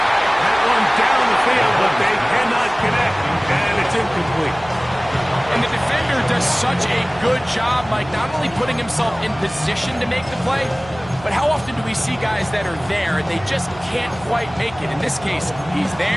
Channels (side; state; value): right; noise; hum, 18 dB below the sound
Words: That one down the field, but they cannot connect, and it's incomplete. And the defender does such a good job, Mike, not only putting himself in position to make the play, but how often do we see guys that are there and they just can't quite make it? In this case, he's